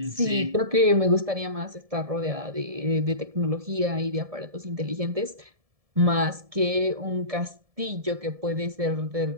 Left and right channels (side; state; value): left; late; 1.7 ms